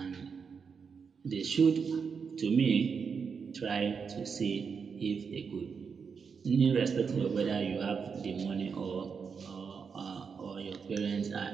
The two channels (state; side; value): quieter; left; 5.9 dB